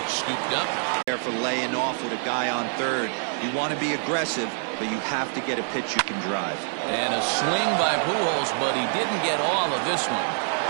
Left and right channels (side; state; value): left; silent; 61 dB below the other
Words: Scooped up. There for laying off with a guy on third. You want to be aggressive, but you have to get a pitch you can drive. And a swing by Pujols, but he didn't get all of this one.